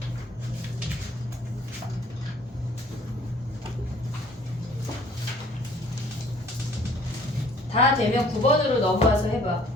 다 되면 9번으로 넘어와서 해봐.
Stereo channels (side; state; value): both; normal; correlation 0.56